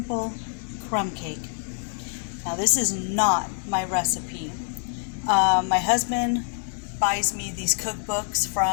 crumb cake. Now this is not my recipe. My husband buys me these cookbooks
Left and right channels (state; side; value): silent; right; 58 dB below the other